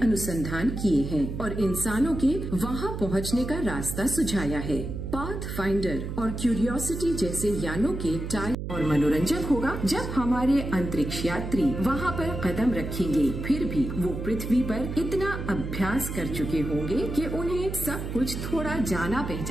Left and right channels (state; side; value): noise; right; hum, 5 dB below the sound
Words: अनुसंधान किए हैं और इंसानों के वहां पहुंचने का रास्ता सुझाया है। पाथ फाइंडर और क्यूरियोसिटी जैसे यानों के टाइम और मनोरंजक होगा जब हमारे अंतरिक्ष यात्री वहां पर कदम रखेंगे। फिर भी वो पृथ्वी पर इतना अभ्यास कर चुके होंगे कि उन्हें सब कुछ थोड़ा जाना